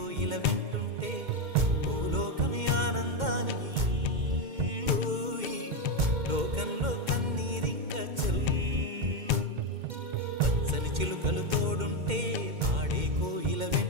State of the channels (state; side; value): late; left; 2.1 ms